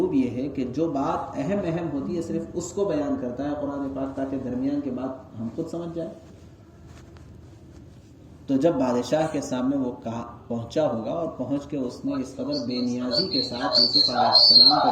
یہ ہے کہ جو بات اہم ہوتی ہے صرف اس کو بیان کرتا ہے قرآن پاک، تاکہ درمیان کے بات ہم خود سمجھ جائیں۔ تو جب بادشاہ کے سامنے وہ پہنچا ہوگا اور پہنچ کے اس نے اس قدر بے نیازی کے ساتھ یوسف علیہ السلام کا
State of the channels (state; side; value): identical; both; correlation 1.00